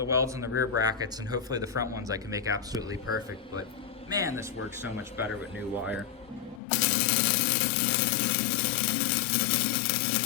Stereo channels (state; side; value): drops out; right; at 6.6 s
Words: welds in the rear brackets, and hopefully the front ones I can make absolutely perfect. But man, this works so much better with new wire.